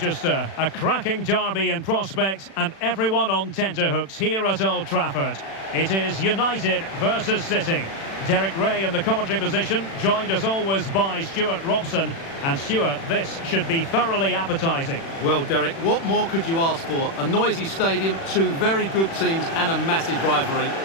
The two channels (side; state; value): right; late; 36 ms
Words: a cracking derby in prospect and everyone on tenterhooks here at Old Trafford. It is United versus City. Derek Ray in the commentary position, joined as always by Stuart Robson. And Stuart, this should be thoroughly appetising. Well, Derek, what more could you ask for? A noisy stadium, two very good teams and a massive rivalry.